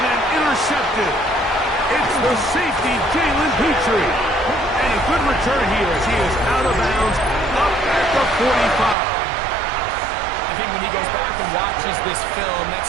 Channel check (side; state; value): left; drops out; at 9.0 s